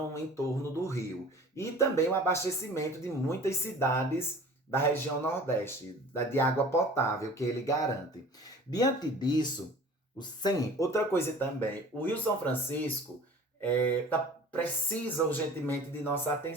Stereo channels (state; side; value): normal; both; correlation 0.44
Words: em torno do rio. E também o abastecimento de muitas cidades da região Nordeste, de água potável que ele garante. Diante disso, sim, outra coisa também, o Rio São Francisco precisa urgentemente de nossa